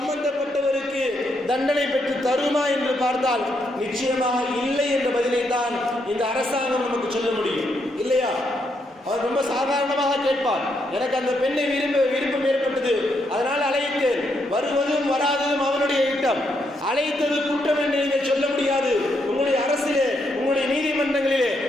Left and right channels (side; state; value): both; normal; correlation 0.78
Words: தண்டனை பெற்று தருமா என்று பார்த்தால் நிச்சயமாக இல்லை என்ற பதிலை தான் இந்த அரசாங்கம் நமக்கு சொல்ல முடியும், இல்லையா? அவர் ரொம்ப சாதாரணமாக கேட்பார், எனக்கு அந்த பெண்ணை விருப்பம் ஏற்பட்டது, அதனால் அழைத்தேன், வருவதும் வராததும் அவனுடைய இட்டம், அழைத்தது குற்றம் என்று நீங்கள் சொல்ல முடியாது. உங்களுடைய அரசிலே, உங்களுடைய நீதிமன்றங்களிலே